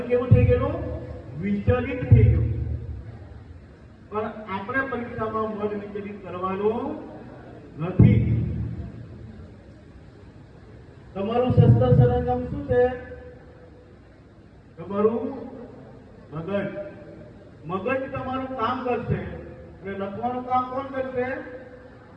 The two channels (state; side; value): identical; both; correlation 1.00